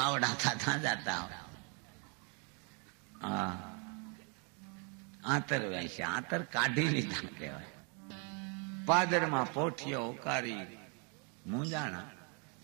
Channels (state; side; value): quieter; left; 36.5 dB